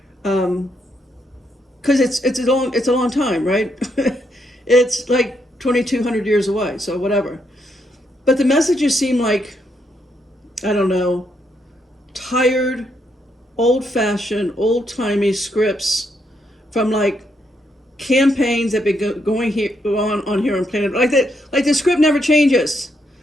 because it's a long time, right? It's like 2,200 years away. So whatever. But the messages seem like, I don't know, tired, old-fashioned, old-timey scripts from like campaigns that have been going on here on planet. Like the script never changes.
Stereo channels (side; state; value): both; normal; correlation 0.77